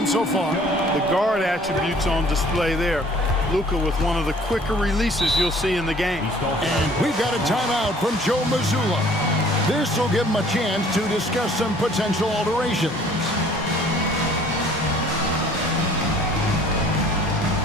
so far. The guard attributes on display there. Luka with one of the quicker releases you'll see in the game. And we've got a timeout from Joe Mazzulla. This will give him a chance to discuss some potential alterations.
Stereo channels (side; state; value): both; normal; correlation 0.54